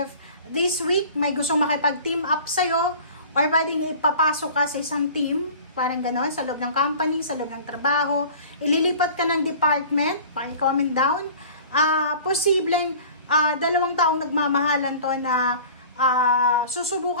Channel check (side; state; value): both; inverted; correlation -0.43